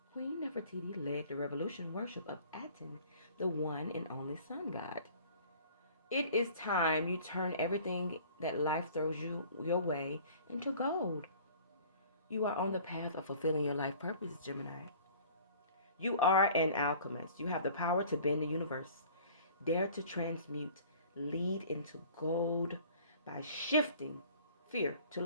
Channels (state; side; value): inverted; both; correlation -0.49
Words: Queen Nefertiti led the revolution worship of Aten, the one and only sun god. It is time you turn everything that life throws your way into gold. You are on the path of fulfilling your life purpose, Gemini. You are an alchemist. You have the power to bend the universe. Dare to transmute, lead into gold by shifting fear to